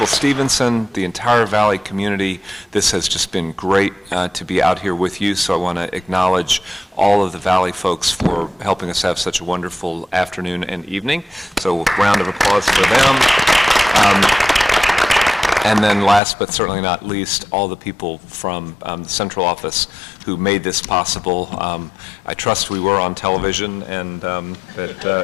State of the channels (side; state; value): right; drops out; at 16.2 s